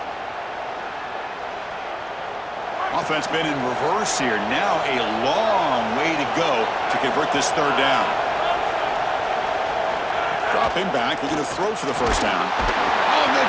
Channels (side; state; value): both; identical; correlation 1.00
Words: Offense been in reverse here. Now a long way to go to convert this third down. Dropping back, looking to throw for the first down. Oh,